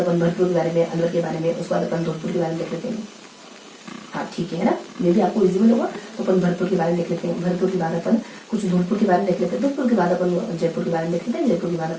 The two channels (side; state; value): both; identical; correlation 1.00